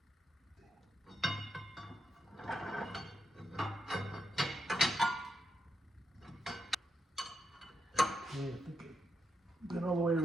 Okay, I think I've been all the way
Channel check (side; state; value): both; normal; correlation 0.83